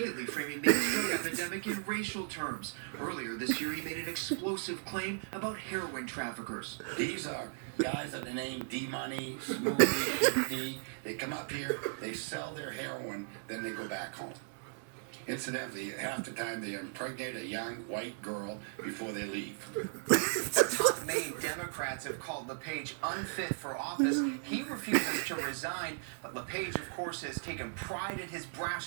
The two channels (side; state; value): left; silent; digital silence